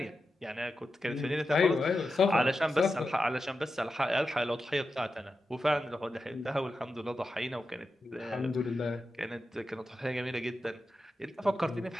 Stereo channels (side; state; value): both; normal; correlation 0.90